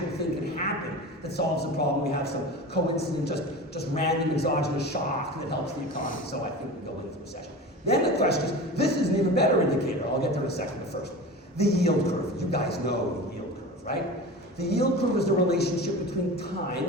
thing can happen that solves the problem. We have some coincident, just random exogenous shock that helps the economy. So I think we go into recession. Then the question is, this is an even better indicator. I'll get there in a second, but first, the yield curve. You guys know the yield curve, right? The yield curve is the relationship between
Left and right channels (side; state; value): both; normal; correlation 0.32